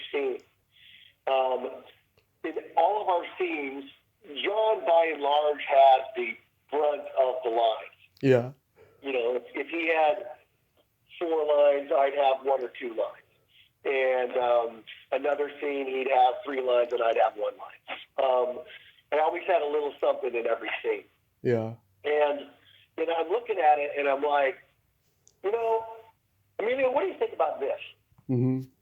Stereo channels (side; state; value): both; identical; correlation 1.00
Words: scene. In all of our scenes, John, by and large, has the brunt of the lines. Yeah. If he had 4 lines, I'd have 1 or 2 lines. And another scene, he'd have 3 lines, and I'd have 1 line. I always had a little something in every scene. Yeah. And I'm looking at it, and I'm like, Emilio, what do you think about this? Mm-hmm.